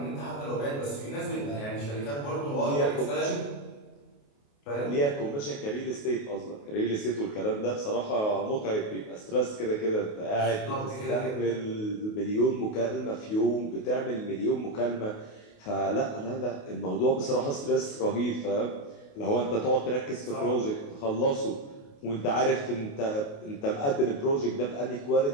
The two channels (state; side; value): late; right; 28 ms